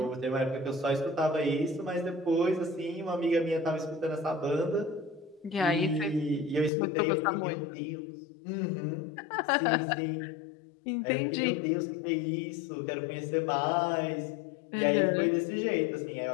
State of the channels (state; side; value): drops out; right; at 6.7 s